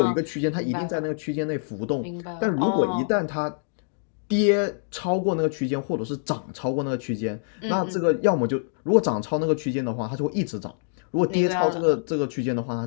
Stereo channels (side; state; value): right; silent; digital silence